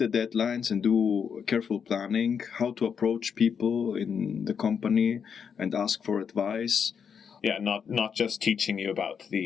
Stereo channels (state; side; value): quieter; right; 6.9 dB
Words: deadlines and do careful planning, how to approach people in the company and ask for advice. Yeah, not just teaching you about